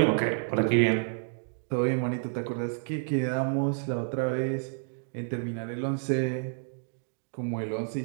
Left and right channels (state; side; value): silent; left; digital silence